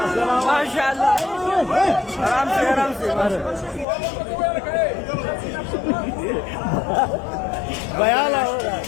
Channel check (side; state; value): right; drops out; at 3.9 s